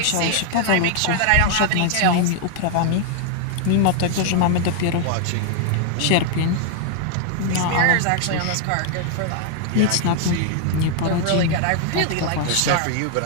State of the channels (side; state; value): both; different; correlation 0.00